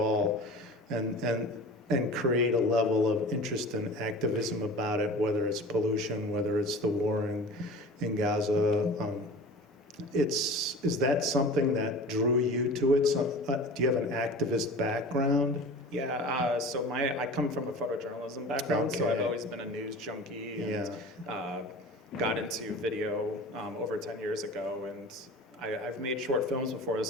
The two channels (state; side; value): normal; both; correlation 0.37